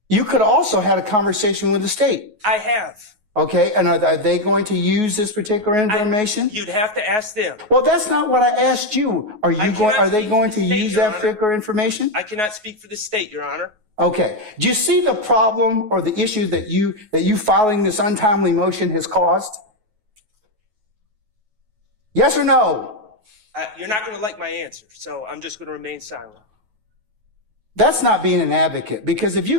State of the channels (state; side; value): late; left; 9.4 ms